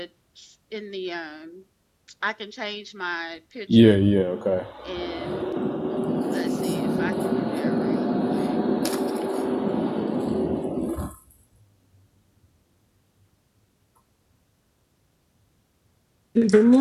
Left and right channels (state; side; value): identical; both; correlation 1.00